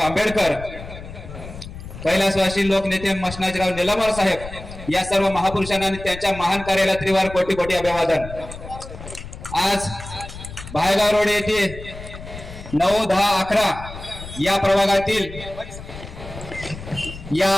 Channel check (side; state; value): left; noise; rumble, 13 dB below the sound